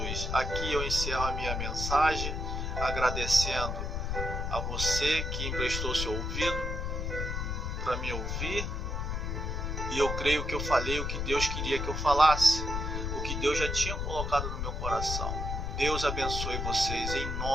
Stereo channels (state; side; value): noise; left; rumble, 2 dB below the sound